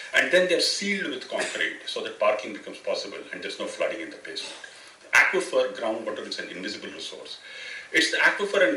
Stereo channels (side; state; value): both; identical; correlation 1.00